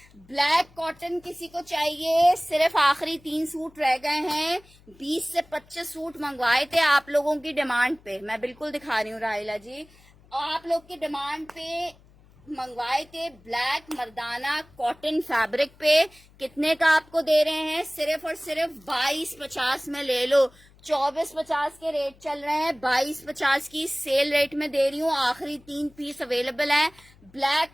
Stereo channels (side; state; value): left; noise; hum, 27 dB below the sound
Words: ब्लैक कॉटन किसी को चाहिए, सिर्फ आखिरी 3 सूट रह गए हैं, 20 से 25 सूट मंगवाए थे आप लोगों की डिमांड पे, मैं बिल्कुल दिखा रही हूँ राहिला जी, आप लोग की डिमांड पे मंगवाए थे। ब्लैक मर्दाना कॉटन फैब्रिक पे कितने का आपको दे रहे हैं, सिर्फ और सिर्फ 2250 में ले लो। 2450 के रेट चल रहे हैं, 2250 की सेल रेट में दे रही हूँ। आखिरी 3 पीस अवेलेबल हैं,